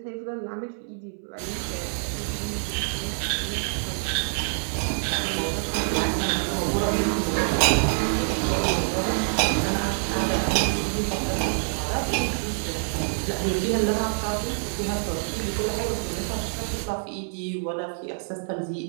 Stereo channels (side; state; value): left; silent; 61 dB below the other